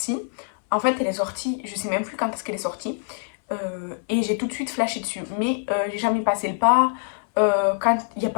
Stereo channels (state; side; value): silent; right; 62 dB below the other